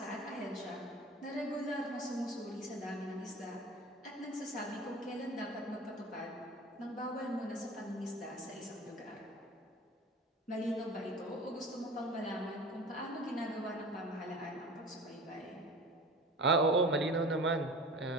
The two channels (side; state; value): both; normal; correlation 0.38